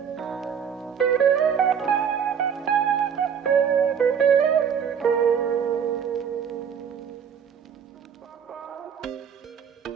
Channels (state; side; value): quieter; left; 7.6 dB